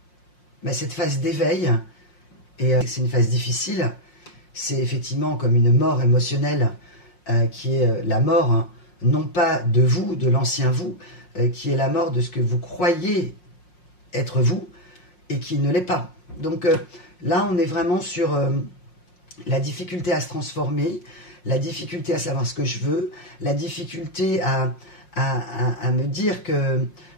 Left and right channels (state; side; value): late; right; 5.6 ms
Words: cette phase d'éveil. Et c'est une phase difficile. C'est effectivement comme une mort émotionnelle qui est la mort, hein, non pas de vous, de l'ancien vous, qui est la mort de ce que vous croyez être vous et qui ne l'est pas. Donc là, on est vraiment sur la difficulté à se transformer, la difficulté à savoir ce que je veux, la difficulté à me dire que